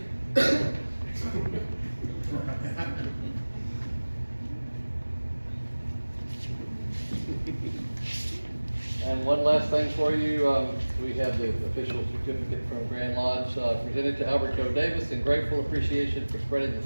And one last thing for you, we have the official certificate from Grand Lodge presented to Albert Joe Davis in grateful appreciation for spreading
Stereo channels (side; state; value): both; inverted; correlation -1.00